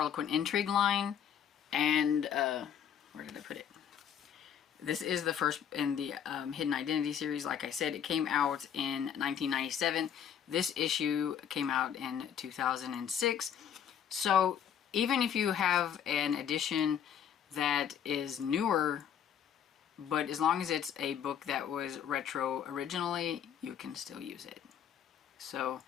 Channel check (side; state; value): right; quieter; 8.7 dB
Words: Intrigue line, and where did I put it? This is the first in the Hidden Identity series. Like I said, it came out in 1997. This issue came out in 2006. So even if you have an edition that is newer, but as long as it's a book that was retro originally, you can still use it. So